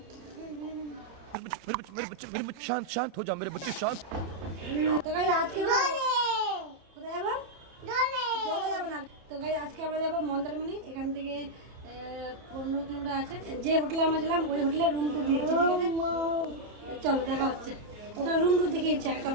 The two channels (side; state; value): left; late; 30 ms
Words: मेरे बच्चे शांत शांत हो जाओ मेरे बच्चे शांत। তো গাইস আজকে কোথায় যাবো? চলে যাবো না। তো গাইস আজকে আমরা যাবো মন্দারমণি। এখান থেকে 15 কিলোমিটার আছে। যে হোটেলে আমরা ছিলাম ওই হোটেলে রুম টু দিয়েছি, ঠিক আছে? চলো দেখা হচ্ছে। তো রুম টু দেখিয়েছি আগে,